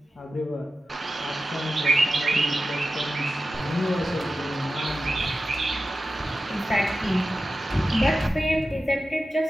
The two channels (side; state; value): both; normal; correlation 0.93